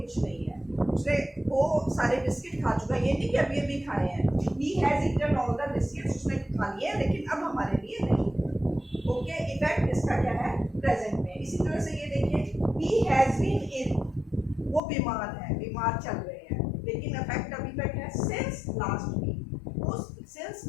नहीं है। उसने वो सारे बिस्किट खा चुका है, ये नहीं कि अभी अभी खाए हैं। He has eaten all the biscuits, उसने खा लिए हैं लेकिन अब हमारे लिए नहीं। ओके, इफेक्ट इसका क्या है, प्रेजेंट में। इसी तरह से ये देखिए, ही हैज बीन इल, वो बीमार है, बीमार चल रहे हैं, लेकिन इफेक्ट अभी तक है सिंस लास्ट वीक, वो सिंस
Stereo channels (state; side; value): drops out; right; at 14.8 s